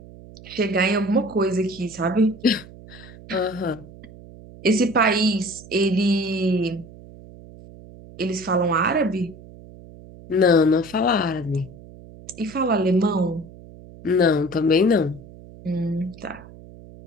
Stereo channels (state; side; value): noise; right; hum, 19 dB below the sound